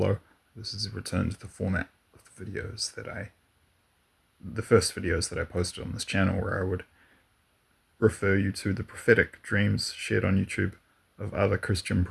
This is a return to the format of the videos the first videos that I posted on this channel, where I would refer you to the prophetic dreams shared on YouTube of other Christian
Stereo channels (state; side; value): identical; both; correlation 1.00